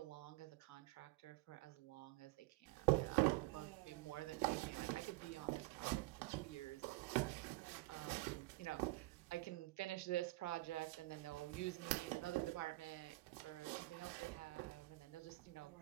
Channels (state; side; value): quieter; left; 20.5 dB